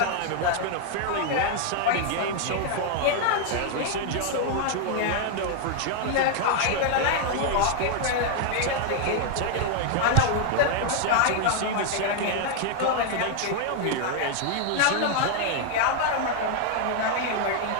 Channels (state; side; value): different; both; correlation 0.00